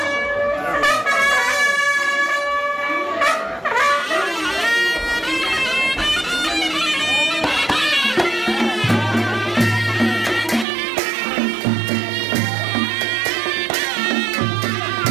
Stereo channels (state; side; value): drops out; left; at 10.7 s